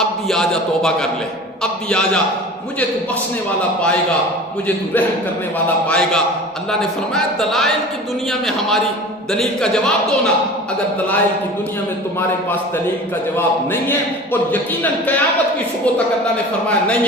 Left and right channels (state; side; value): normal; both; correlation 0.38